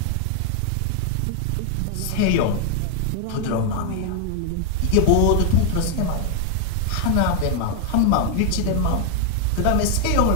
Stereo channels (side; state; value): both; different; correlation 0.00